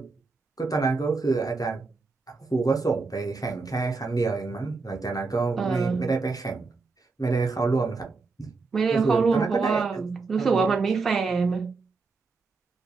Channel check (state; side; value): quieter; left; 4.0 dB